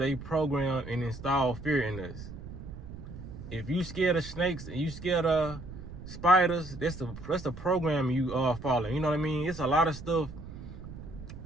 program and install fear in us. If you scared of snakes and you scared of spiders, that's the program you are following. You know what I mean? It's a lot of stuff.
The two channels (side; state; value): right; noise; rumble, 12 dB below the sound